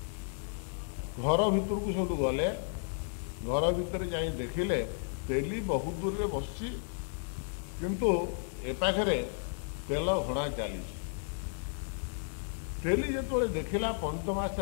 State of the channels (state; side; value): silent; right; 56 dB below the other